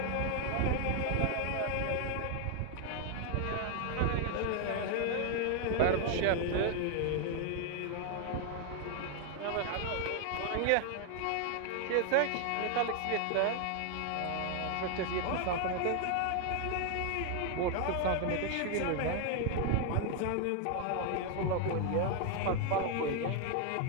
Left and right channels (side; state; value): both; different; correlation 0.00